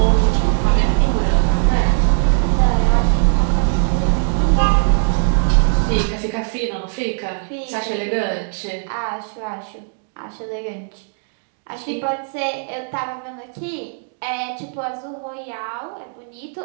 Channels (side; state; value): left; silent; 60 dB below the other